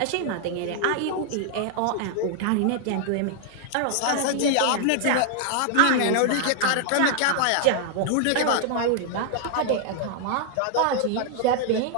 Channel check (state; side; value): different; both; correlation 0.00